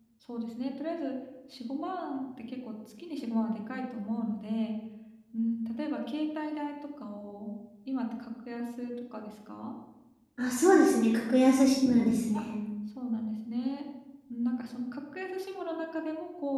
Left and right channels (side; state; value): both; identical; correlation 1.00